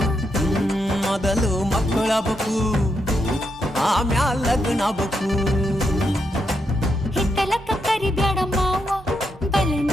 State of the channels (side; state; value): both; normal; correlation 0.82